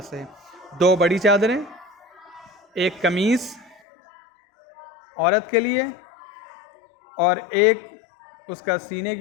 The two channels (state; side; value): drops out; right; at 3.8 s